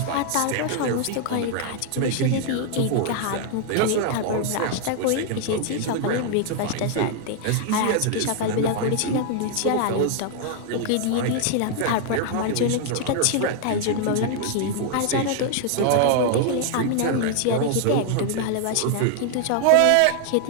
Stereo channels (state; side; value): different; both; correlation 0.00